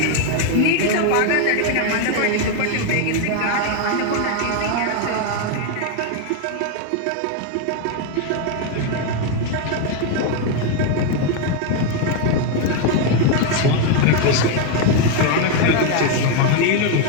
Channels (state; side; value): different; both; correlation 0.01